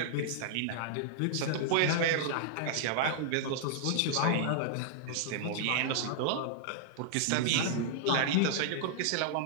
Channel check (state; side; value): different; both; correlation -0.01